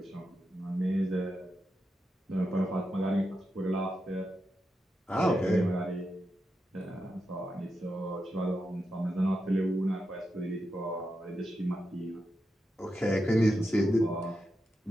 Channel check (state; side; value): normal; both; correlation 0.87